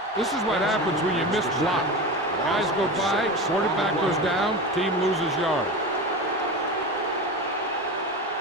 This is what happens when you miss block. Guys go by, quarterback goes down, team loses yard.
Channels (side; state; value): both; normal; correlation 0.26